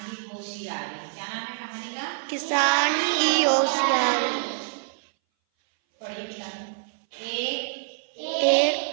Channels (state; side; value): silent; left; 59 dB below the other